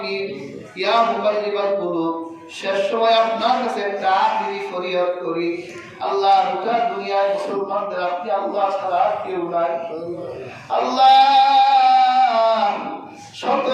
ইয়া মুকাল্লিবাল কুলুব, শেষ সময় আপনার কাছে একটা আখিরি ফরিয়াদ করি। আল্লাহ, গোটা দুনিয়ায় মুসলমানদের আপনি আল্লাহ ছাড়া কেউ নাই। আল্লাহ, শত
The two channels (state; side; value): identical; both; correlation 1.00